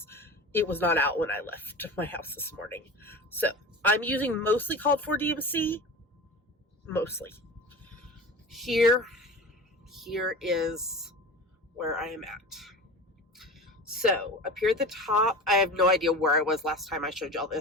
it was not out when I left my house this morning. So I'm using mostly called for DMC. Mostly. Here is where I am at. So up here at the top, I have no idea where I was last time I showed y'all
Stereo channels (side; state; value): both; normal; correlation 0.32